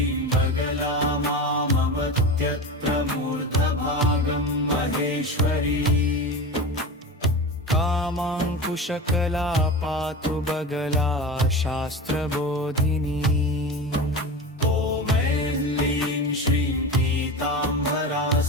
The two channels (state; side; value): normal; both; correlation 0.27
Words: बगला मामवत्यत्र मूर्धभागं महेश्वरी कामाङ्कुशकला पातु बगला शास्त्रबोधिनी ॐ ऐं श्रीं पीताम्बरा